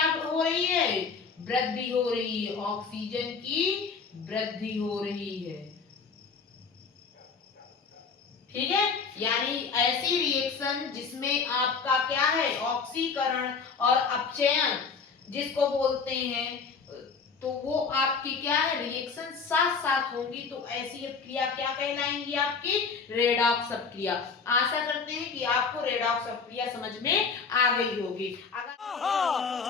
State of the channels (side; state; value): right; quieter; 5.3 dB